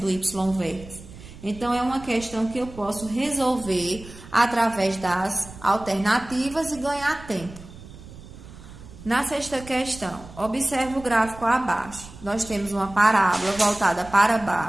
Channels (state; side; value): noise; right; rumble, 17 dB below the sound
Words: y-vértice. Então, é uma questão que eu posso resolver através das alternativas e ganhar tempo. Na sexta questão, observe o gráfico abaixo. Nós temos uma parábola voltada para